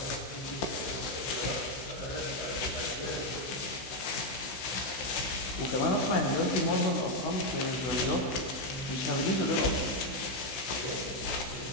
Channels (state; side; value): late; right; 16 ms